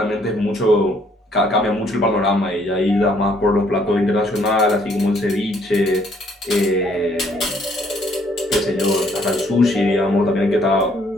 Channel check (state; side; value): normal; both; correlation 0.65